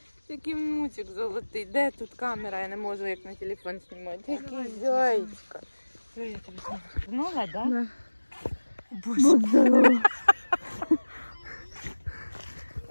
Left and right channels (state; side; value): inverted; both; correlation -1.00